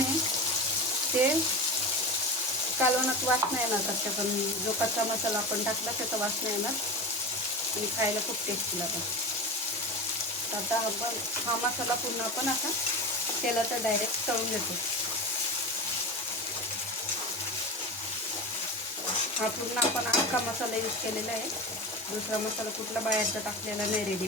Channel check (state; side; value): normal; both; correlation 0.26